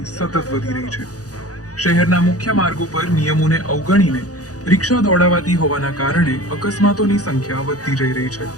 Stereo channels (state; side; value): late; right; 0.67 ms